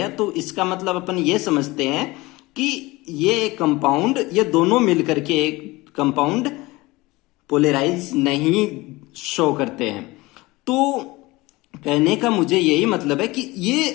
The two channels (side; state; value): right; quieter; 21.4 dB